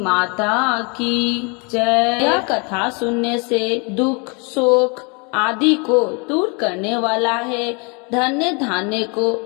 की जय। यह कथा सुनने से दुख शोक आदि को दूर करने वाला है, धन्य धान्य को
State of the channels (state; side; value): quieter; right; 32.6 dB